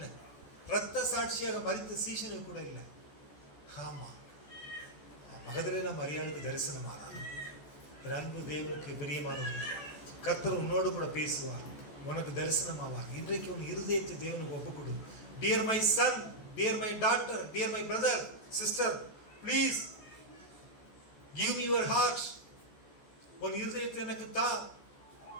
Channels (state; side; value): late; right; 14 ms